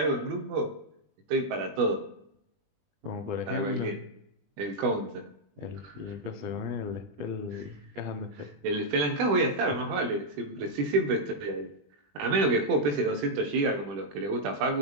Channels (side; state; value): left; late; 20 ms